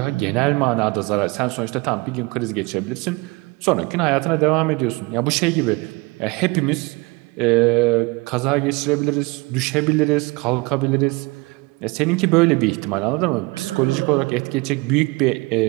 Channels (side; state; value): left; quieter; 25.1 dB